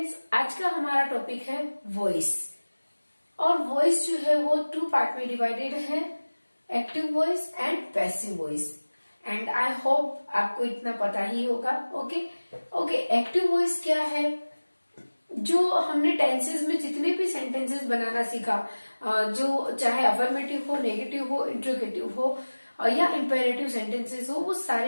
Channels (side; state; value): both; inverted; correlation -1.00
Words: आज का हमारा topic है voice और voice जो है वो टू पार्ट में डिवाइडेड है, active voice and passive voice. And I hope आपको इतना पता ही होगा। ओके, एक्टिव वॉइस क्या है? जो हमने टेंसेस में जितने भी सेंटेंसेस बनाना सीखा, जो चाहे अफर्मेटिव हो, नेगेटिव हो, इंट्रोगेटिव हो या इंपेरेटिव सेंटेंसेस हो, वो